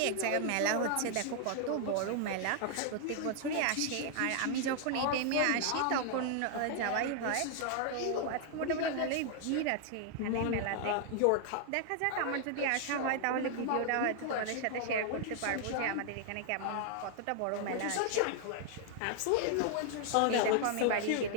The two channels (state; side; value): different; both; correlation 0.00